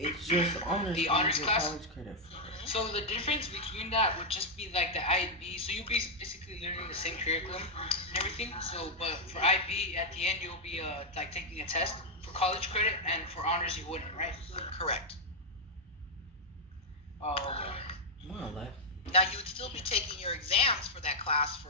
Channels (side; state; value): both; normal; correlation -0.02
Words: just honors. The you honors get class? college credit for. so the difference between that would just be like the IB. So you'll be basically learning the same curriculum and everything. So but for IB at the end you'll be like taking a test for college credit, and for honors you wouldn't, right? Correct. Oh, okay. More or less. Now you would still be taking your exams for that class